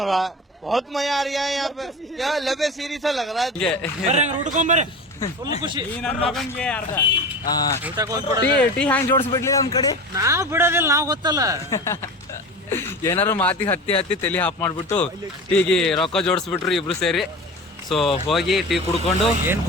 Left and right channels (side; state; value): both; normal; correlation 0.32